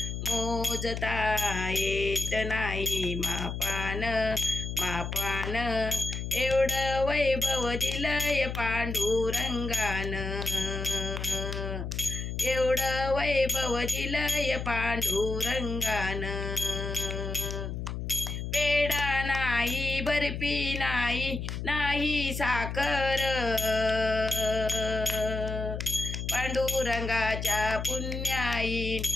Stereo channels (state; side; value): noise; left; hum, 5 dB below the sound